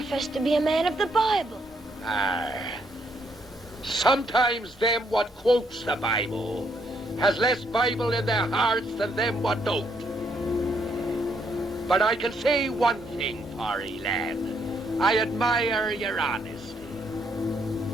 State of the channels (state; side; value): normal; both; correlation 0.73